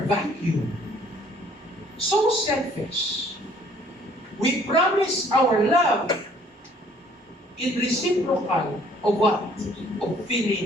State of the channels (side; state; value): both; normal; correlation 0.59